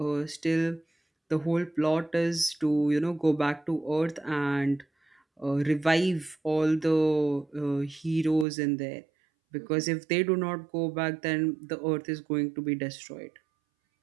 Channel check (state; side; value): drops out; left; at 8.5 s